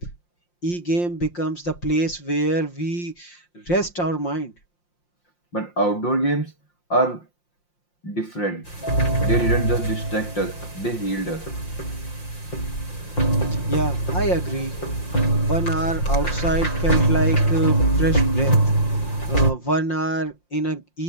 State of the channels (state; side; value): late; right; 5.7 ms